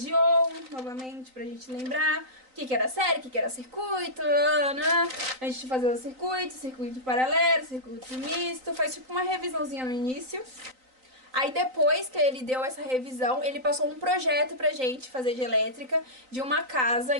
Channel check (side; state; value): left; late; 3.9 ms